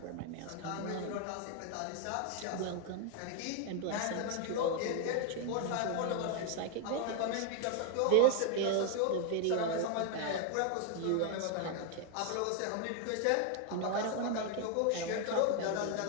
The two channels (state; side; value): different; both; correlation 0.01